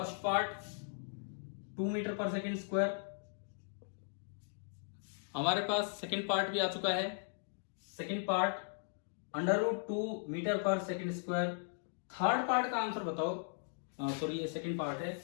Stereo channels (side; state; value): right; silent; digital silence